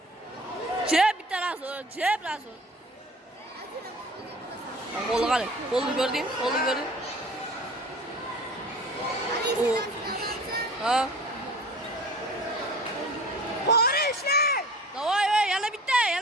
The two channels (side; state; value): both; normal; correlation 0.43